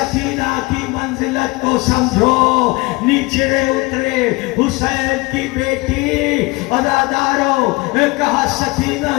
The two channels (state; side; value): quieter; right; 24.1 dB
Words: کی منزلت کو سمجھو، نیچے اترے حسین کی بیٹی۔ عزادارو کہا